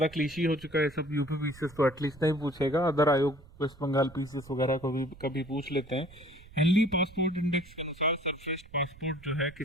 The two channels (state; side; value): noise; right; rumble, 21 dB below the sound